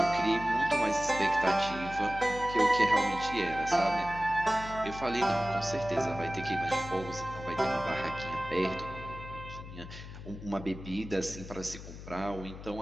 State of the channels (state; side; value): noise; left; hum, 13 dB below the sound